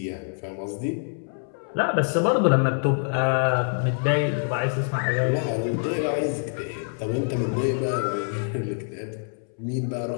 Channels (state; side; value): silent; right; 61 dB below the other